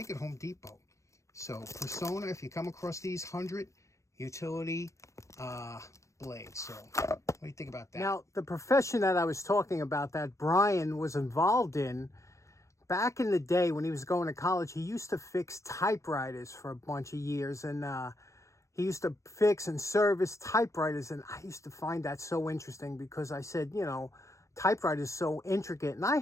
at Home Depot. So Persona, if you come across these 100 utility blades. So what do you think about that? Now, the profession that I was talking about that Brian was involved in, back in the day when he was going to college, he used to fix typewriters for a bunch of years. And he used to fix and service typewriters. And I used to find that so interesting because I said, you know, typewriters so intricate. And I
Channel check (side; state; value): right; late; 0.15 ms